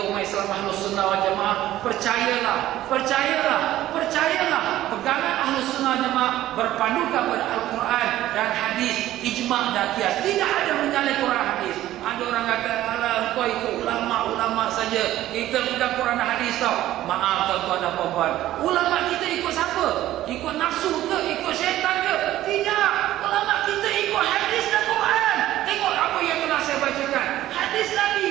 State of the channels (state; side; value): quieter; left; 14.2 dB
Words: umat Islam Ahlus Sunnah wal Jamaah percayalah pegangan Ahlus Sunnah wal Jamaah berpandukan pada Al-Quran dan hadis, ijma' dan qiyas. Tidak ada menyalahkan Quran hadis. Ada orang kata alah kau ikut ulama saja, kita bukan Quran dan hadis tau. Maaf tuan-tuan dan puan-puan, ulama kita ikut siapa? Ikut nafsu ke? Ikut syaitan ke? Tidak. Ulama kita ikut hadis dan Quran. Tengok apa yang telah saya bacakan. Hadis Nabi,